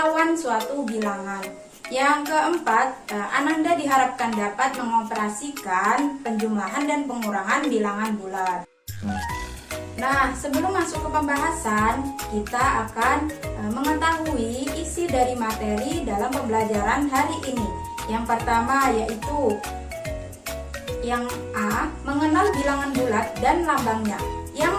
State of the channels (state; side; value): identical; both; correlation 1.00